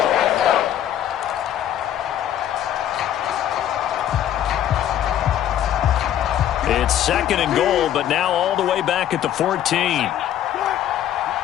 It's 2nd and goal, but now all the way back at the 14.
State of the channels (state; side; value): quieter; right; 11.1 dB